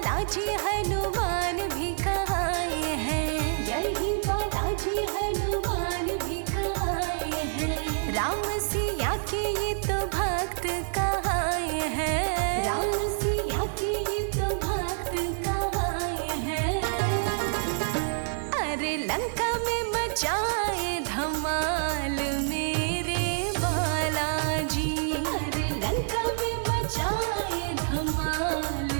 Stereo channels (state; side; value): silent; left; 60 dB below the other